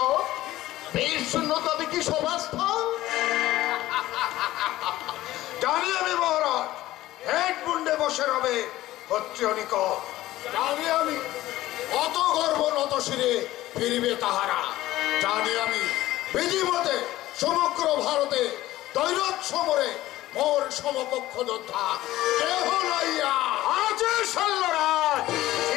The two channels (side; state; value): right; quieter; 15.8 dB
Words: বীর শূন্য তবে কি সভাস্থল? জানি আমি মহারাজ, হেড মুন্ডে বসে রবে ক্ষত্রিয় নিকট। জানি আমি অত গর্ব নত শিরে ফিরিবে তাহারা। জানি আমি বিধিমতে সমগ্র ভারতে দৈরথ সমরে মোর সমকক্ষ যোদ্ধা কেহ লইয়া আছে শল্যরাজ।